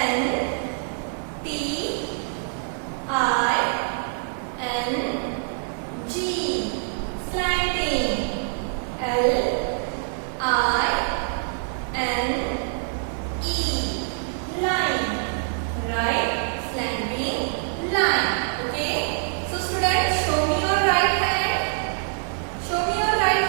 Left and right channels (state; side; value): silent; left; digital silence